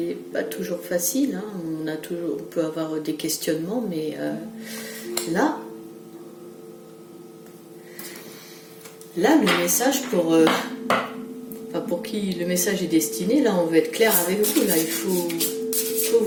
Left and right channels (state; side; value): identical; both; correlation 1.00